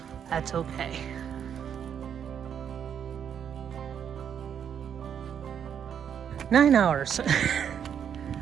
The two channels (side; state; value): left; quieter; 8.3 dB